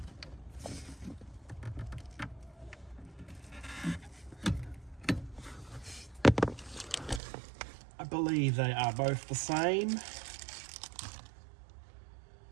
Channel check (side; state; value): left; drops out; at 7.2 s